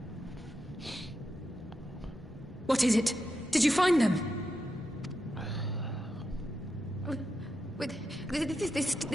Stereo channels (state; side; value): normal; both; correlation 0.86